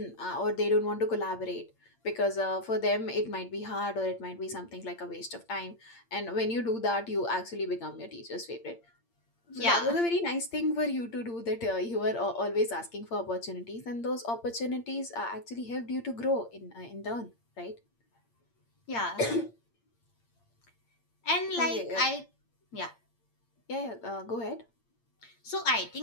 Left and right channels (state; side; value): late; right; 8.7 ms